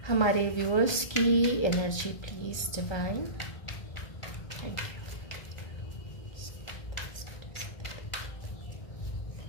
हमारे व्यूअर्स की energy please divine. Thank you.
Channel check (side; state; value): right; late; 1.3 ms